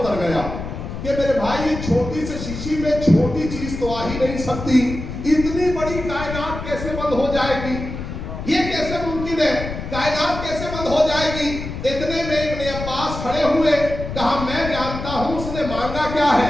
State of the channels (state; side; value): noise; left; rumble, 7 dB below the sound